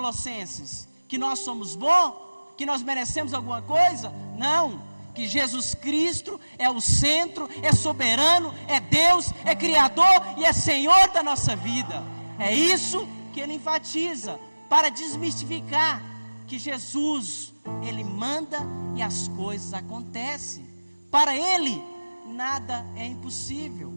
Que nós somos bons? Que nós merecemos alguma coisa? Não, que Jesus Cristo é o centro, é soberano, é Deus, é Criador e é Senhor da nossa vida. É isso que ele enfatiza, para desmistificar que Jesus, ele manda e as coisas acontecem. Para ele, nada é impossível.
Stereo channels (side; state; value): both; inverted; correlation -1.00